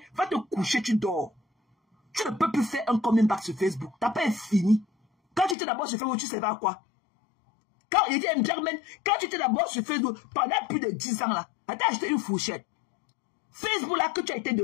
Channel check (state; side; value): drops out; right; at 5.6 s